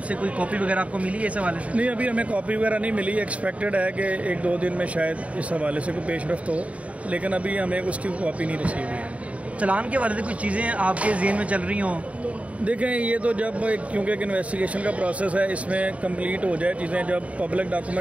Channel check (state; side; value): late; left; 0.066 ms